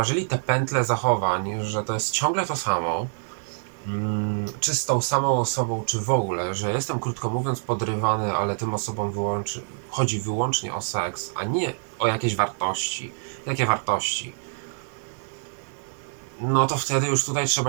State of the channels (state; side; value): silent; left; digital silence